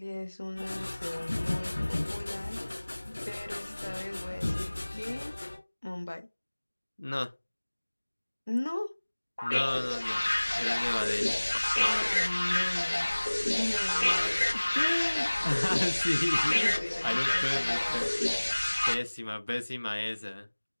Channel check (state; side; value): inverted; both; correlation -1.00